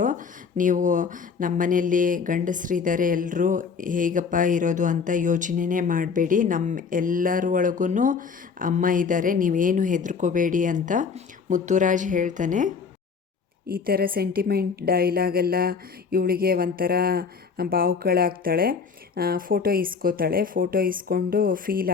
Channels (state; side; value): quieter; right; 5.6 dB